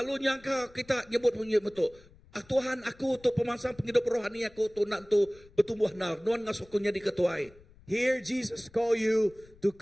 nyangka kita nyebut bunyi itu, Tuhan aku tu pemansang penghidup rohani aku tu nak tu bertumbuh nar, nuan ngasuh kunya diketuai. Here Jesus call you to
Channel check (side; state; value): left; noise; rumble, 25 dB below the sound